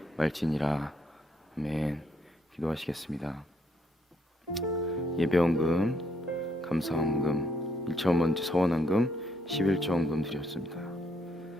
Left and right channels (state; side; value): normal; both; correlation 0.73